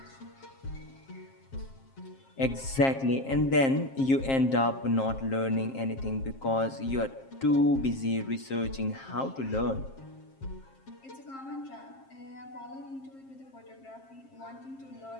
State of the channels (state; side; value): late; right; 7.5 ms